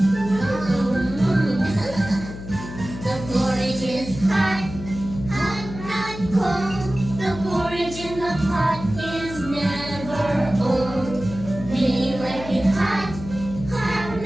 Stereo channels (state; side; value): noise; left; hum, 11 dB below the sound